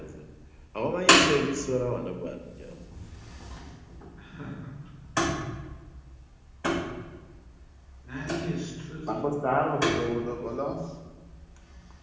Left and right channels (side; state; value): both; identical; correlation 1.00